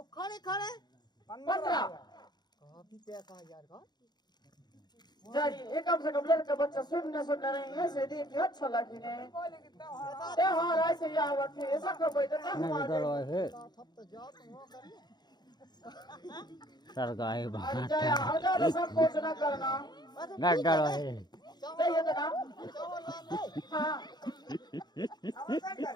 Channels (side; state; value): right; late; 0.20 ms